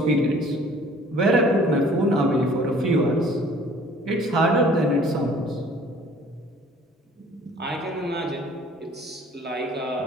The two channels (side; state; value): both; normal; correlation 0.53